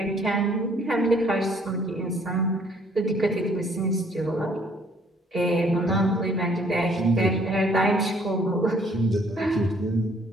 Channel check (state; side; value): normal; both; correlation 0.62